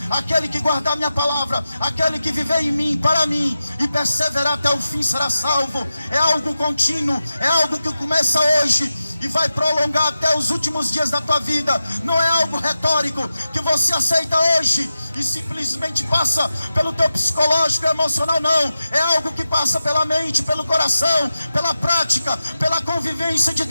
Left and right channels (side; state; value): both; inverted; correlation -0.92